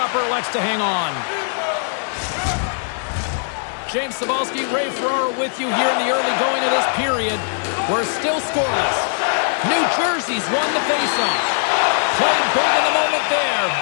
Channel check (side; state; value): right; silent; digital silence